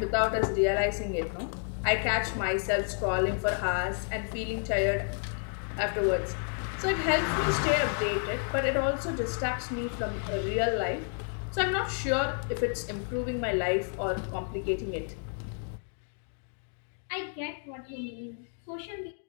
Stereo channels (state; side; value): silent; right; 57 dB below the other